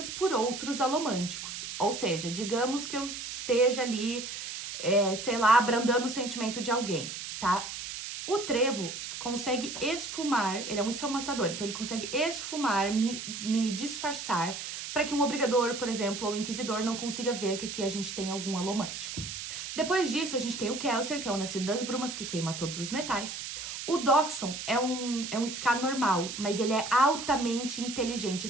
por outros alomânticos. Ou seja, digamos que eu esteja ali, sei lá, abrandando o sentimento de alguém, tá? O trevo consegue esfumar, ele é um esfumaçador, então ele consegue esfumar, me disfarçar, para que um obrigador, por exemplo, ou inquisidor não consiga ver que aqui a gente tem algum alomântico. Depois disso, a gente tem o Kelsier, que é o nascido das brumas, que queima todos os metais. O Doxon é um Ska normal, mas ele é altamente inteligente.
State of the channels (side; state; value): right; noise; hiss, 7 dB below the sound